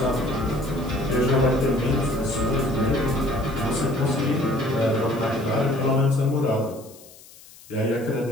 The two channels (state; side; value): noise; left; hiss, 22 dB below the sound